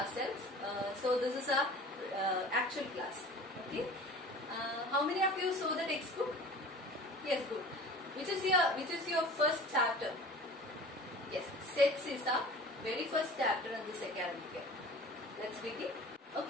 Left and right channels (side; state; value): both; normal; correlation 0.41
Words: So this is our actual class. Okay. How many of you saw the textbook? Yes, good. Which is your first chapter? Yes, sets is our very first chapter in this academic year. Let's begin.